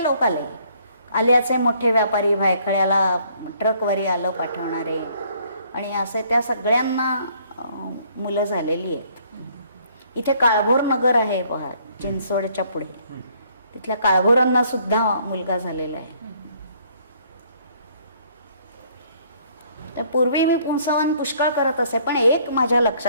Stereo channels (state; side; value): inverted; both; correlation -0.63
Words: लोक आले. आल्याचे मोठे व्यापारी, भायखळ्याला ट्रकवरी आलं पाठवणारे, आणि असे त्या सगळ्यांना मुलं झालेली आहेत. इथे काळभोर नगर आहे पहा, चिंचवडच्या पुढे, तिथल्या काळभोरांना सुद्धा मुलगा झालेला आहे. तर पूर्वी मी पुंसवन पुष्कळ करत असे, पण एक माझ्या